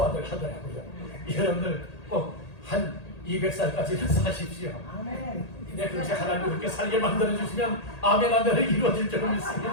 하더라고요. 여러분들 꼭 한 200살까지는 사십시오. 근데 그렇게 하나님 그렇게 살게 만들어 주시면 아멘 하면 이루어질 줄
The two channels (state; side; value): late; right; 1.8 ms